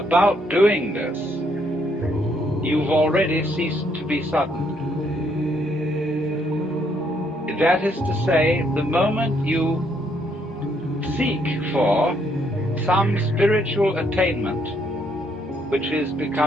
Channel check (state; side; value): normal; both; correlation 0.71